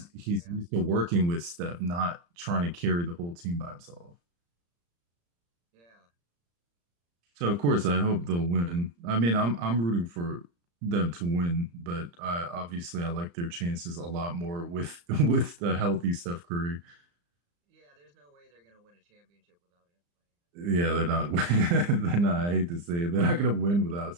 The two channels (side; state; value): left; late; 35 ms